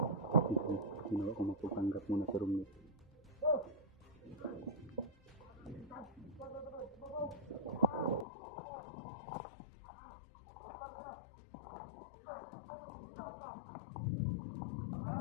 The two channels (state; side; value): drops out; right; at 8.2 s